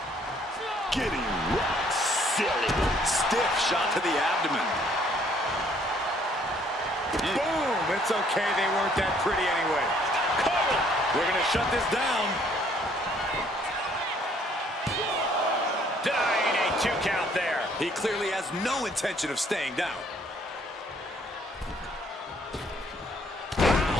Getting rock silly. Stiff shot to the abdomen. Boom! It's okay, they weren't that pretty anyway. Cover. We're gonna shut this down. Denying a 2 2 count there. He clearly has no intention of staying down.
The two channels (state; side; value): normal; both; correlation 0.63